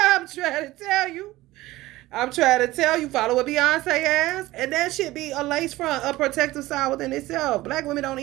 trying to tell you. Follow what Beyonce asked. And that should be a lace front, a protective style within itself. Black women don't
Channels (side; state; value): left; quieter; 17.8 dB